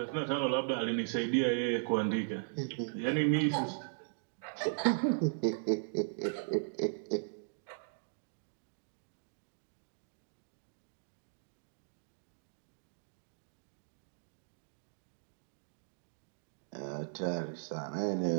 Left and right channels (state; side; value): silent; left; digital silence